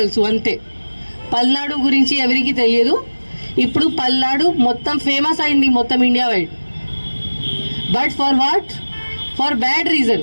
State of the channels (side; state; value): both; inverted; correlation -1.00